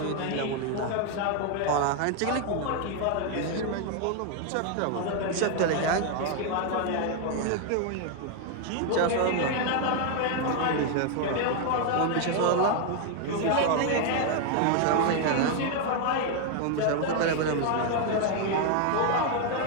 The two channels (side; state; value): both; different; correlation 0.01